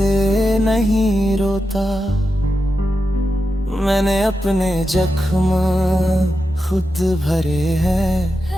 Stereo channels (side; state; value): both; normal; correlation 0.89